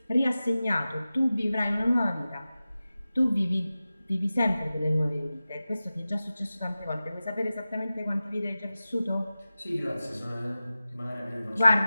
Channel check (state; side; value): inverted; both; correlation -0.95